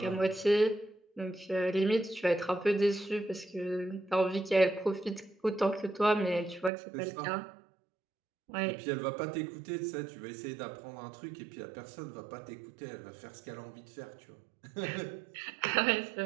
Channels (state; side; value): drops out; left; at 6.7 s